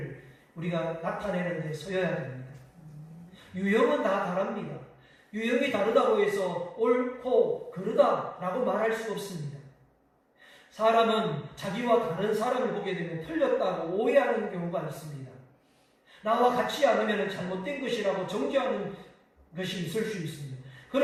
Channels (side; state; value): both; identical; correlation 1.00